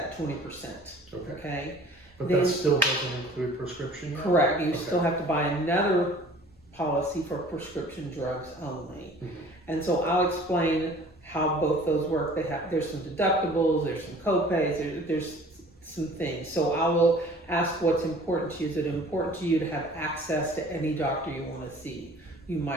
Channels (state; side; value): normal; both; correlation 0.49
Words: 20%. But that still doesn't include prescription yet? Correct. You still have to buy another policy for prescription drugs only. And so I'll explain how both those work. There's some deductibles, there's some co-pays, there's some things. So I will ask what's important to you. Is it important to you to have access to any doctor you want to see? You